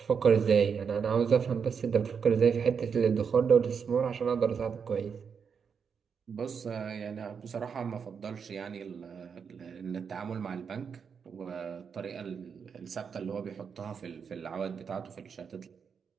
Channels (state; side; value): quieter; left; 6.5 dB